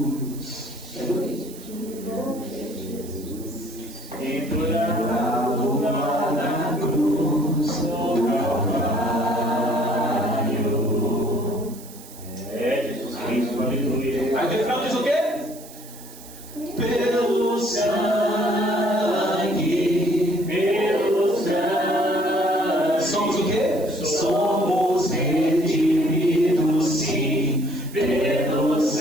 É bonito. Pendurado lá na cruz do Calvário. Jesus Cristo, aleluia. Aí o refrão diz o quê? Pelo sangue. Pelo sangue. Somos o quê? Somos redimidos, sim. Pelo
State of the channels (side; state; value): right; noise; hiss, 18 dB below the sound